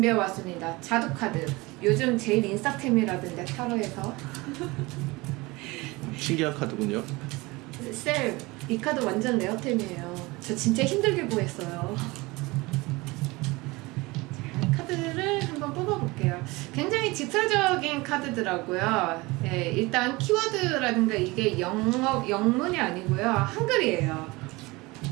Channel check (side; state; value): left; quieter; 23.0 dB